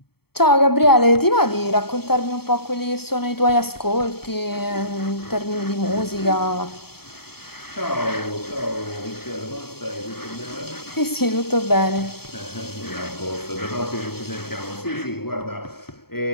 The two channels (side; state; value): right; late; 0.96 ms